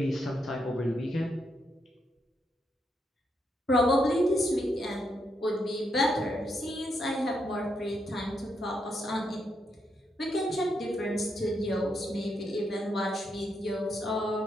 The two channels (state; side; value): normal; both; correlation 0.80